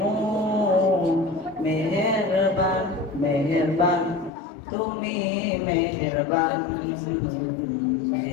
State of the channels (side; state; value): right; drops out; at 4.3 s